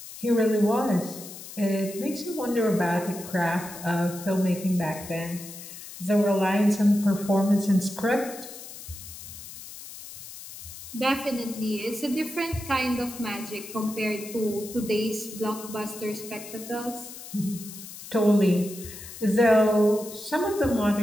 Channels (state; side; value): noise; left; hiss, 13 dB below the sound